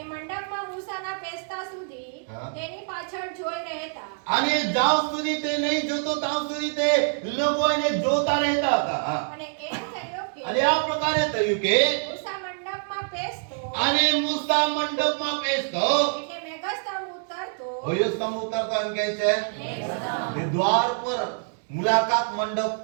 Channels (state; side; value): silent; left; 61 dB below the other